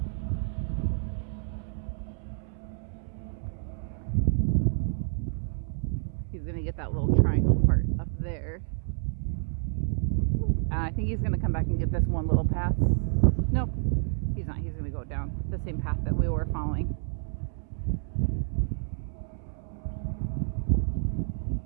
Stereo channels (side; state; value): left; silent; 58 dB below the other